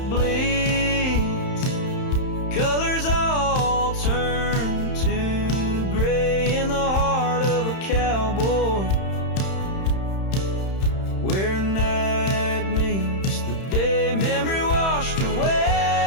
bleeds, colors all turn to gray in the heart of a cowboy, where night meets the day. Memory washed away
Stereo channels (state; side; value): late; right; 31 ms